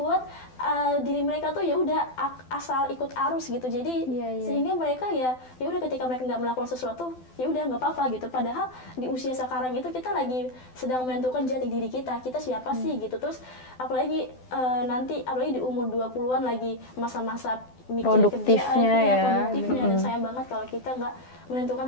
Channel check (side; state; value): right; late; 12 ms